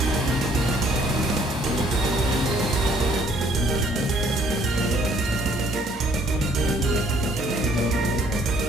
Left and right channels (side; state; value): both; normal; correlation 0.62